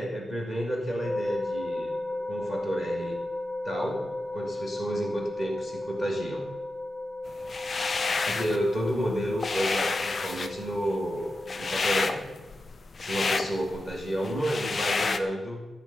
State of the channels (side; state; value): both; normal; correlation 0.91